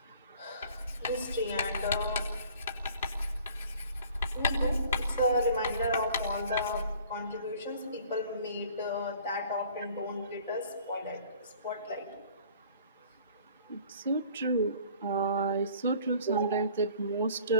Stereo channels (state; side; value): inverted; both; correlation -0.52